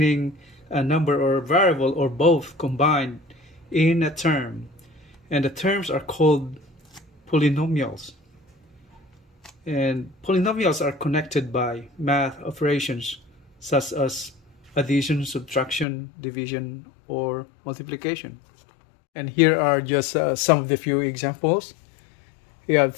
a number or variable or both combined in a term, and the terms are called polynomials. And polynomials are connected by math operations such as addition, subtraction, division, or multiplication. And here are just some of the few examples. We have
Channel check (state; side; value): drops out; right; at 15.9 s